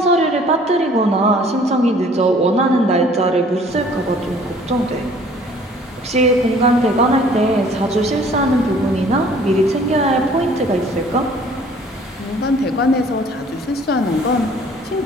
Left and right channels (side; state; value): both; normal; correlation 0.54